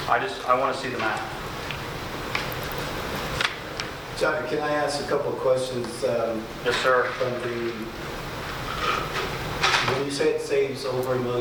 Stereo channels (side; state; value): both; identical; correlation 1.00